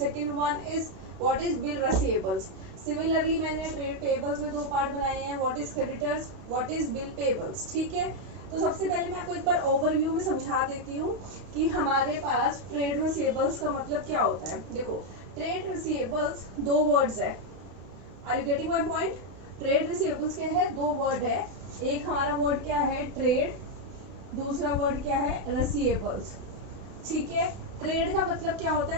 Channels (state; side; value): late; left; 32 ms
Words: one is what is bill receivables. Similarly मैंने ट्रेड पेबल्स में दो पार्ट बनाए हैं, what is creditors, what is bill payables. ठीक है, तो सबसे पहले मैं आपको एक बार ओवरव्यू में समझा देती हूँ कि हमारे पास ट्रेड रिसीवेबल्स का मतलब क्या होता है। देखो, ट्रेड रिसीवेबल्स दो वर्ड्स है, are you getting my point. Trade receivables क्या है, दो वर्ड है, एक हमारा वर्ड क्या है ट्रेड, दूसरा वर्ड क्या है रिसीवेबल्स। ठीक है, ट्रेड का मतलब क्या होता